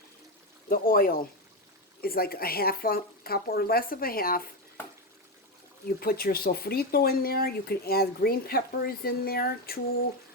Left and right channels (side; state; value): both; normal; correlation 0.12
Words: the oil is like a half a cup or less of a half. You put your sofrito in there. You can add green peppers in there,